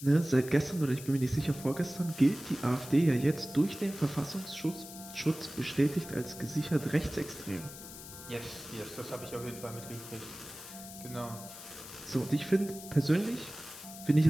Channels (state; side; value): noise; left; hiss, 13 dB below the sound